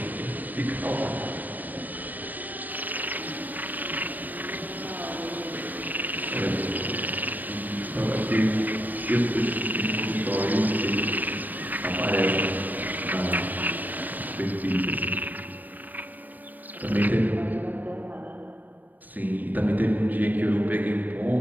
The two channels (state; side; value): late; left; 0.086 ms